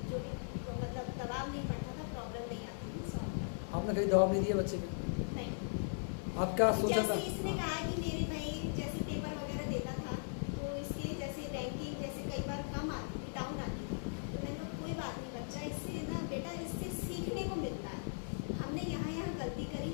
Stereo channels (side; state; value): right; silent; digital silence